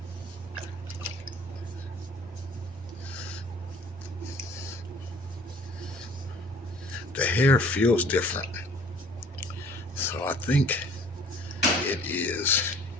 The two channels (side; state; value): both; normal; correlation 0.52